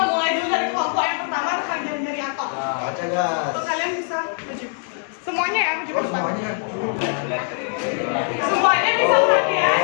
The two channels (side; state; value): right; silent; 56 dB below the other